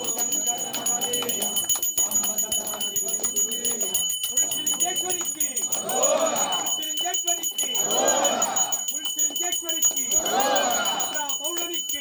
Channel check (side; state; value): both; identical; correlation 1.00